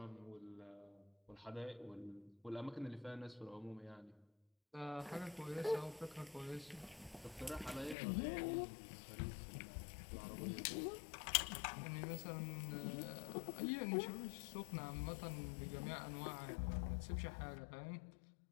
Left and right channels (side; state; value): right; drops out; at 8.0 s